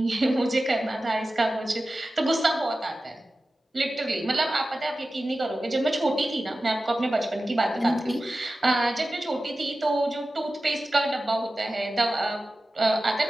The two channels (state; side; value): normal; both; correlation 0.95